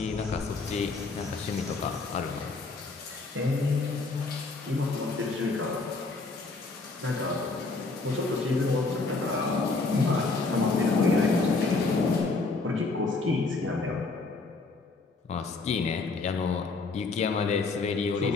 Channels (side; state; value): right; quieter; 3.8 dB